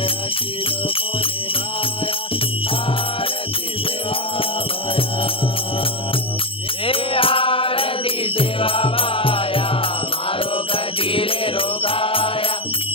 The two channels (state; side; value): late; right; 0.26 ms